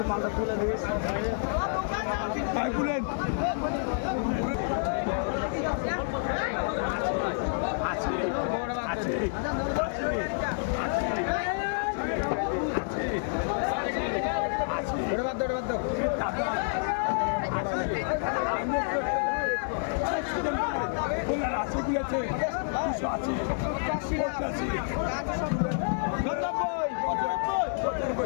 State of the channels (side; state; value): right; silent; digital silence